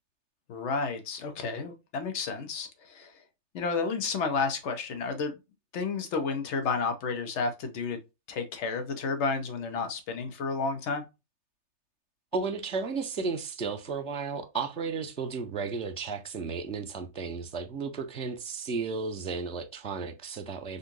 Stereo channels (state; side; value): late; right; 3.3 ms